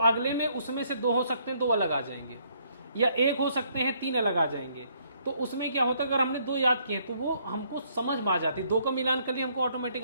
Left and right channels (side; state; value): both; inverted; correlation -0.68